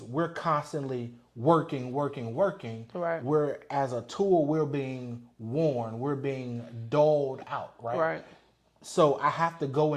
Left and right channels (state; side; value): identical; both; correlation 1.00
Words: we're constantly working. Right. We're, as a tool, we're being worn, we're being doled out, right? Right. So I have to go